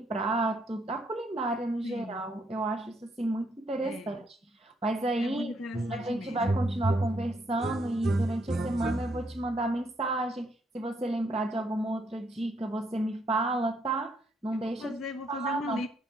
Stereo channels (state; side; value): normal; both; correlation 0.73